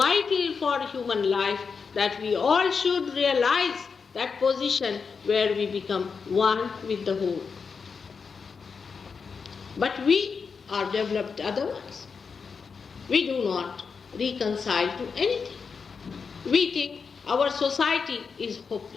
for human life that we all should realize that position where we become one with the whole. But we are developed otherwise. We do not reconcile to anything. We think our society is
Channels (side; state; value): right; quieter; 5.5 dB